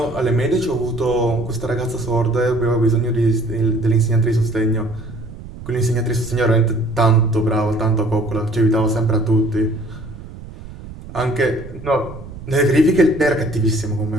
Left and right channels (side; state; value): right; noise; rumble, 14 dB below the sound